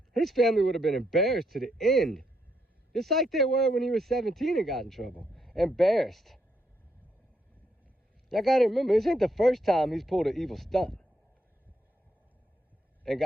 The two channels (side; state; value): both; normal; correlation 0.77